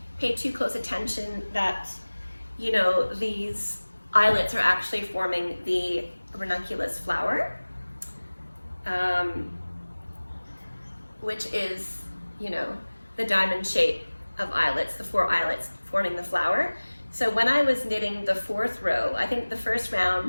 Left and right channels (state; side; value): inverted; both; correlation -1.00